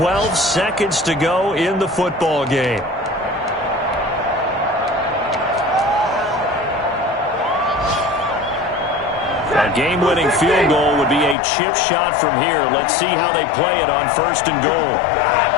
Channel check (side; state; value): right; drops out; at 11.4 s